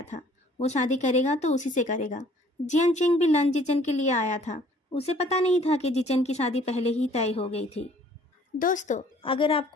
था, वो शादी करेगा तो उसी से करेगा। जियन चिंग भी लन जिचन के लिए आया था। उसे पता नहीं था कि जिचन की शादी पहले ही तय हो गई थी। दोस्तों, अगर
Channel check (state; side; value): normal; both; correlation 0.57